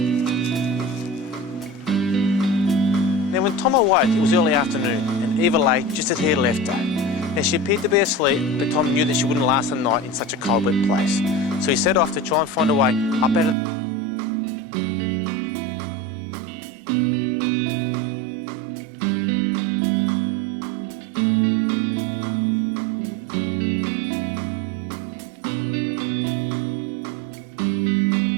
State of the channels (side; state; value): left; drops out; at 13.6 s